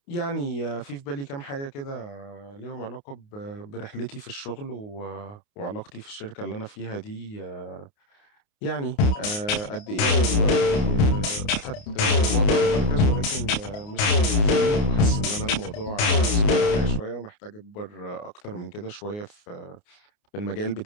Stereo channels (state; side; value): late; right; 29 ms